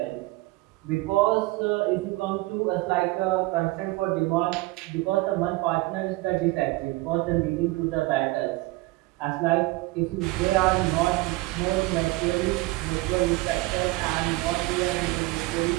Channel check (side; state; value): left; quieter; 21.0 dB